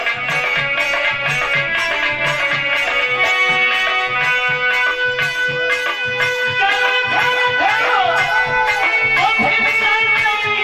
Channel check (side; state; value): both; identical; correlation 1.00